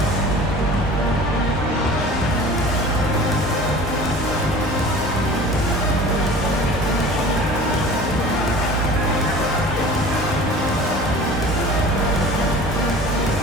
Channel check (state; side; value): normal; both; correlation 0.41